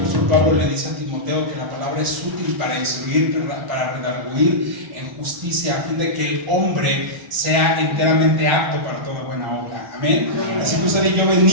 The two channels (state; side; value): late; left; 1.4 ms